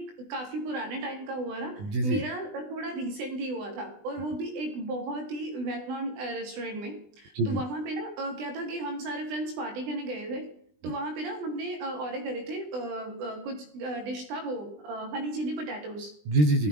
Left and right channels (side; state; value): left; late; 20 ms